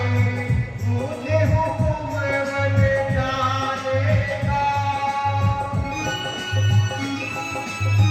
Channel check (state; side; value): identical; both; correlation 1.00